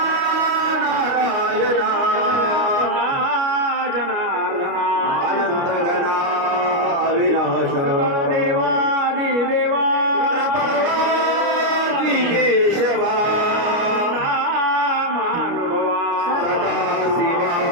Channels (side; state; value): left; late; 29 ms